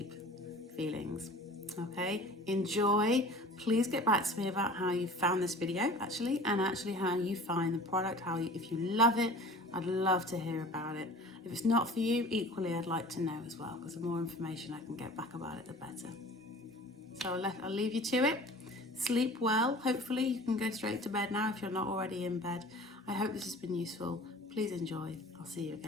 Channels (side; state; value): both; normal; correlation 0.43